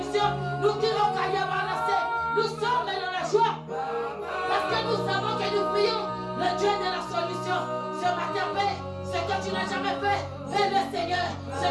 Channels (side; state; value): both; identical; correlation 1.00